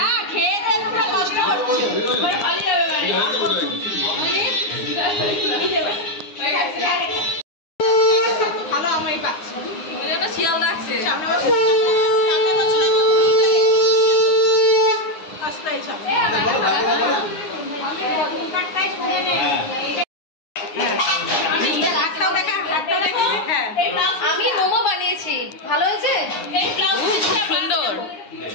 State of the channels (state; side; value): late; right; 9.7 ms